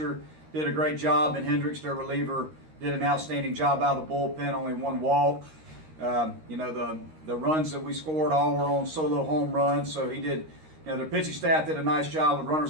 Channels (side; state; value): left; late; 13 ms